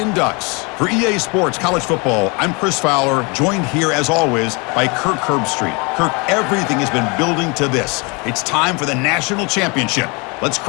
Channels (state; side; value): quieter; right; 29.8 dB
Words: Ducks. For EA Sports College Football, I'm Chris Fowler, joined here as always by Kirk Herbstreit. Kirk, everything has been building to this. It's time for the national championship. Let's